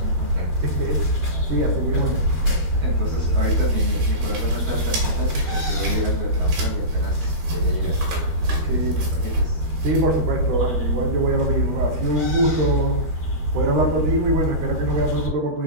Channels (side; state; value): left; late; 13 ms